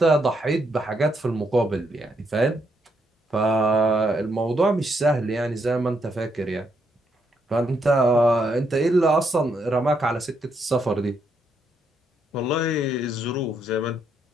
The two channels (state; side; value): normal; both; correlation 0.77